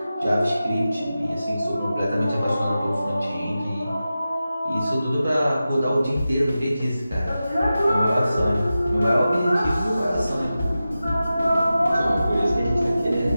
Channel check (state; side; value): inverted; both; correlation -0.94